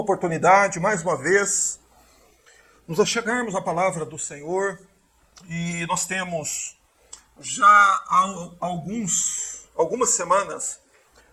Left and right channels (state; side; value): identical; both; correlation 1.00